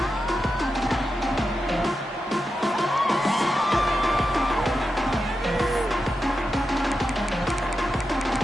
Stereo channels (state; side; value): normal; both; correlation 0.89